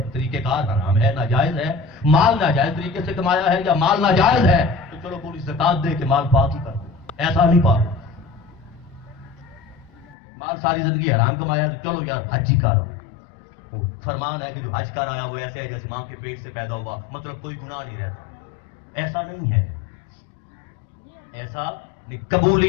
طریقہ کار حرام ہے، ناجائز ہے، مال ناجائز طریقے سے کمایا ہے یا مال ناجائز ہے تو چلو پوری زکات دے کے مال پاک ہی کر دو، ایسا نہیں پاک۔ مال ساری زندگی حرام کمایا تو چلو یار حج ہی کر، فرمان ہے کہ جو حج کر آیا وہ ایسے ہے جیسے ماں کے پیٹ سے پیدا ہوا، مطلب کوئی گناہ نہیں رہتا، ایسا نہیں ہے، ایسا نہیں۔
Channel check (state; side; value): drops out; right; at 10.2 s